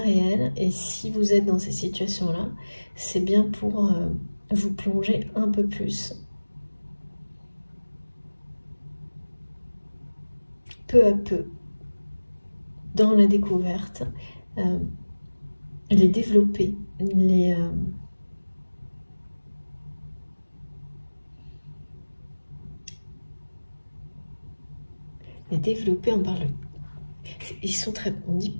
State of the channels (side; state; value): both; inverted; correlation -1.00